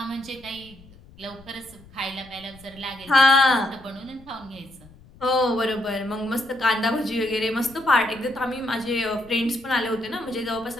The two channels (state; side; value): noise; left; rumble, 23 dB below the sound